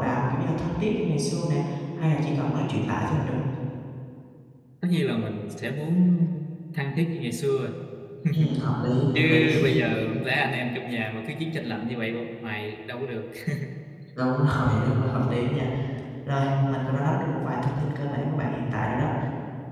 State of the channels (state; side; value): identical; both; correlation 1.00